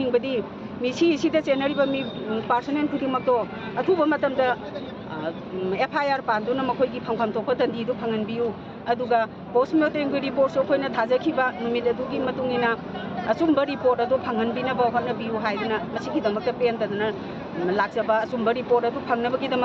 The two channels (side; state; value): both; identical; correlation 1.00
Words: मिसी सिदा जेनरिबा मी पर्सोनेल खुदिमक्तो अथुबा मतमदा एफआईआर पानदुना मखोइगी फंफम तोप दंडी दु फंगनबियु अदुगा पोस्टमार्टम की रिपोर्ट सो अखोइना थाजखिबा नुमिद अदुगी मतुंगिना असुम्बा रिपोर्ट अदु फंगनबिना होनबियु हाइदना मसिगी दमक्ता पेंदना लाक्सबा असुम्बा रिपोर्ट अदु फंगनबगी